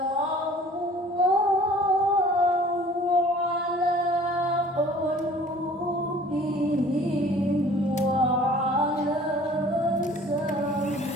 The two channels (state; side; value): normal; both; correlation 0.50